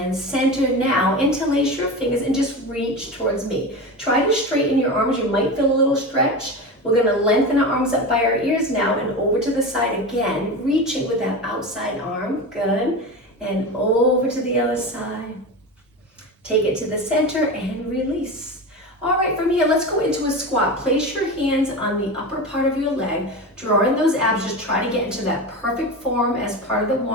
center now, interlace your fingers and just reach towards me. Try to straighten your arms, you might feel a little stretch. We're gonna lengthen our arms up by our ears now and over to the side again, reaching with that outside arm, good. And over to the other side. Take it to the center and release. All right, from here, let's go into a squat. Place your hands on the upper part of your leg, draw in those abs, just try to get into that perfect form as part of the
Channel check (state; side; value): normal; both; correlation 0.25